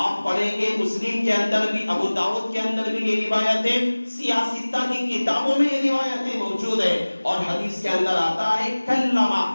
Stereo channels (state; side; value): inverted; both; correlation -1.00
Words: آپ پڑھیں گے مسلم کے اندر بھی، ابو داؤد کے اندر بھی یہ روایت ہے، سیاستہ کی کتابوں میں یہ روایتیں موجود ہیں، اور حدیث کے اندر آتا ہے کلمہ،